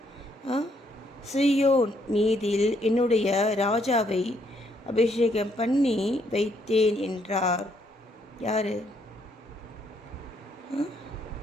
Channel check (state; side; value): normal; both; correlation 0.72